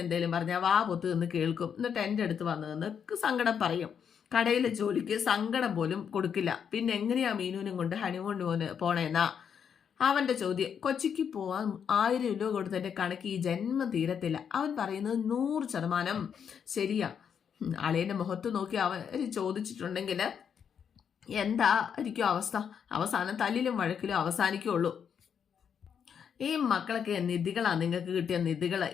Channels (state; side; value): quieter; right; 7.6 dB